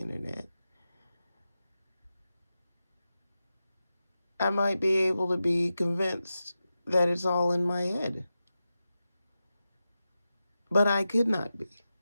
I might be able to be convinced that it's all in my head. But I could not be.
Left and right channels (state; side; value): inverted; both; correlation -0.91